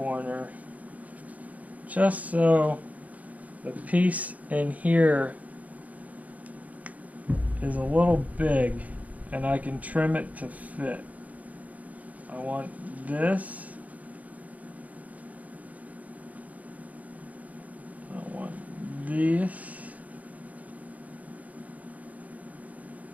just so the piece in here is a little big and I can trim it to fit. I want this. I want this.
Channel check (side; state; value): left; late; 0.073 ms